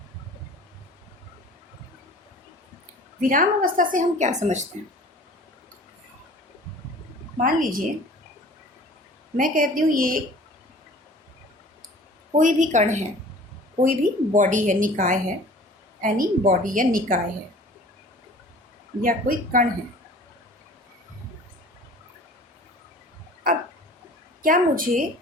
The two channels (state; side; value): normal; both; correlation 0.46